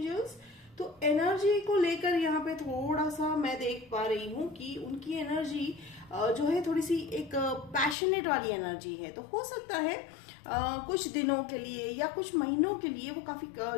तो एनर्जी को लेकर यहाँ पे थोड़ा सा मैं देख पा रही हूँ कि उनकी एनर्जी जो है थोड़ी सी एक पैशनेट वाली एनर्जी है। तो हो सकता है कुछ दिनों के लिए या कुछ महीनों के लिए वो काफी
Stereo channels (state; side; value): drops out; right; at 8.0 s